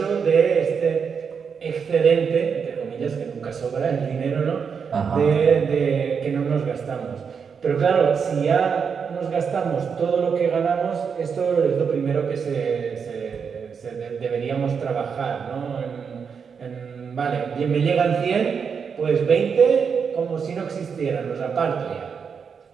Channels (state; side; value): quieter; left; 6.3 dB